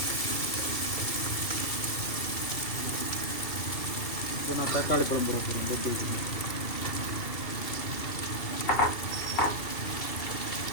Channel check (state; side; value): late; right; 2.7 ms